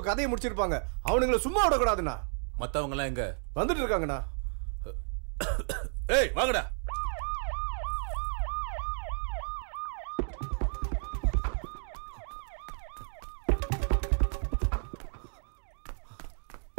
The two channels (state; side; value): silent; left; 56 dB below the other